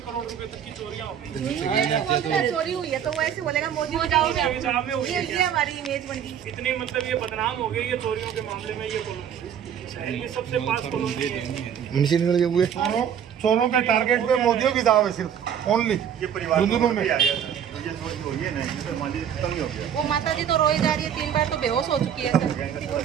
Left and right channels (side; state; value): left; quieter; 8.8 dB